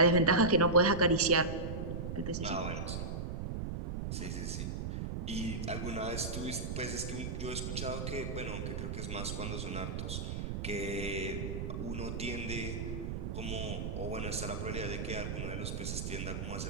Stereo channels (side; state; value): right; noise; rumble, 3 dB below the sound